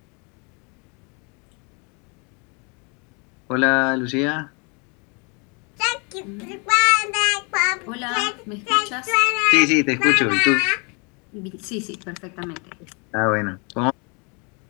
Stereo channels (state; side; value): quieter; right; 32.9 dB